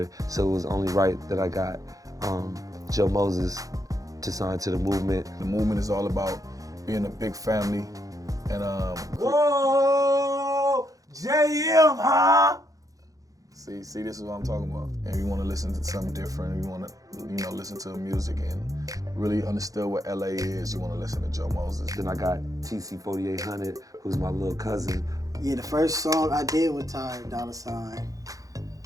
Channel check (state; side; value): late; left; 0.17 ms